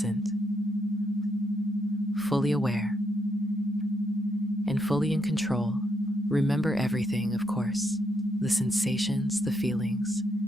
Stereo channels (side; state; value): both; normal; correlation 0.77